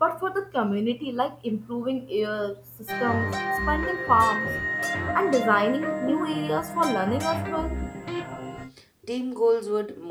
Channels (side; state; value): both; identical; correlation 1.00